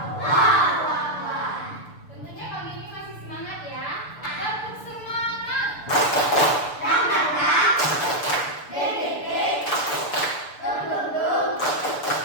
Tentunya pagi ini masih semangat ya. Tetap semangat.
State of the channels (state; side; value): late; right; 6.8 ms